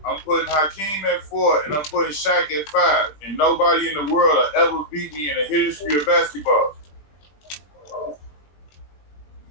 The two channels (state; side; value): late; right; 20 ms